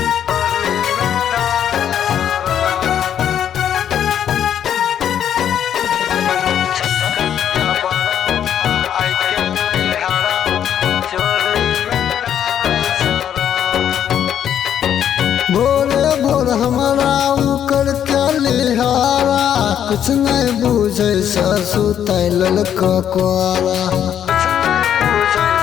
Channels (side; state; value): right; quieter; 9.6 dB